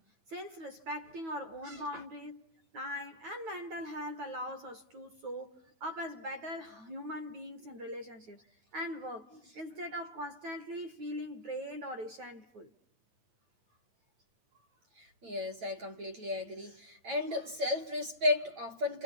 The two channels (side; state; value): left; late; 8.9 ms